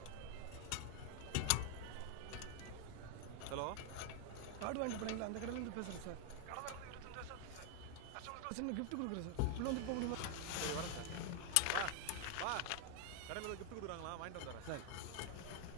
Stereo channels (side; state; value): both; different; correlation 0.00